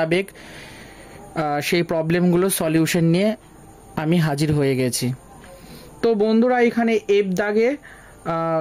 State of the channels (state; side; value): identical; both; correlation 1.00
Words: সেই প্রবলেমগুলো সলিউশন নিয়ে আমি হাজির হয়ে গেছি। তো বন্ধুরা, এখানে এফ দাগে